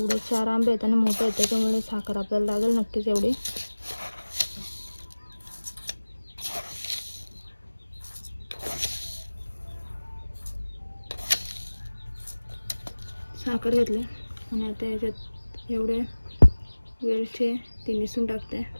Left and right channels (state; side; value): inverted; both; correlation -1.00